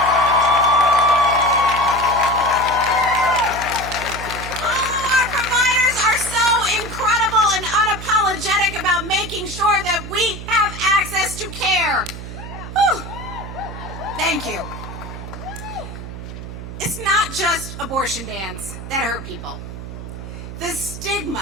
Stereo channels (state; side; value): noise; right; hum, 10 dB below the sound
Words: Unapologetic about making sure that we have access to care. Whew. Thank you. It's not just abortion bans that hurt people. The